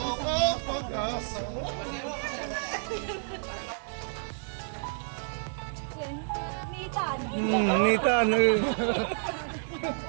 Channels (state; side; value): silent; left; digital silence